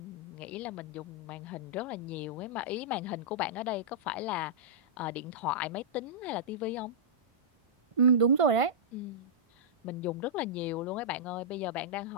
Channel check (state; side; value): late; left; 1.5 ms